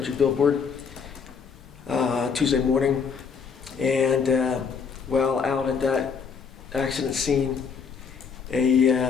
billboard, Tuesday morning. And while out at that accident scene,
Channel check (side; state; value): right; quieter; 6.0 dB